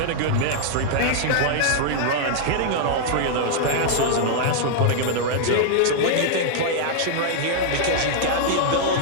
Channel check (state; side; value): different; both; correlation -0.01